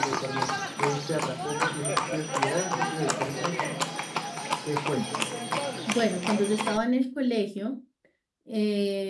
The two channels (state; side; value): identical; both; correlation 1.00